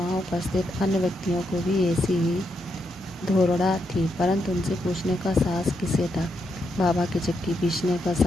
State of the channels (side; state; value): both; normal; correlation 0.81